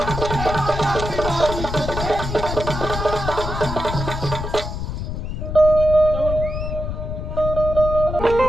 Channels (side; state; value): left; noise; rumble, 5 dB below the sound